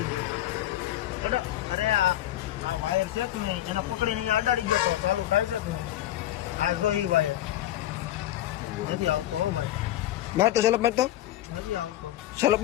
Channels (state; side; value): quieter; right; 13.5 dB